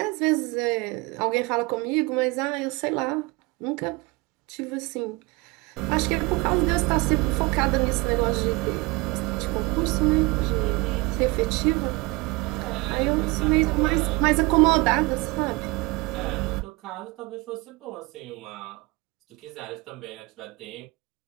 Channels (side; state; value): left; quieter; 24.0 dB